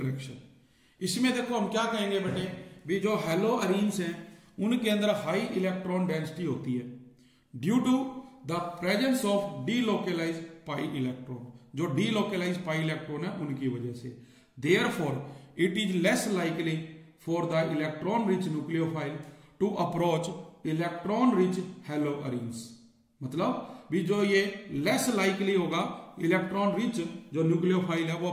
इसमें देखो हम क्या कहेंगे बेटे, भी जो हेलोअरीन्स हैं उनके अंदर हाई इलेक्ट्रॉन डेंसिटी होती है due to the presence of delocalise pi electron, जो डीलोकेलाइज पाई इलेक्ट्रॉन है उनकी वजह से। Therefore it is less likely for the electron rich nucleophile to approach electron rich haloarenes, मतलब भी जो ये लेस लाइकली होगा इलेक्ट्रॉन रिच जो न्यूक्लियोफाइल है वो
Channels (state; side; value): identical; both; correlation 1.00